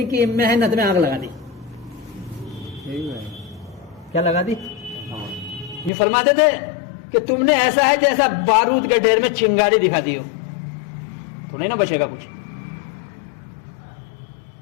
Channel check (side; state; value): right; drops out; at 5.9 s